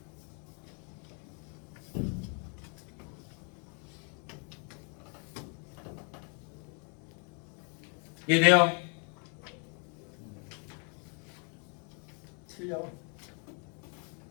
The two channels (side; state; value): right; quieter; 38.1 dB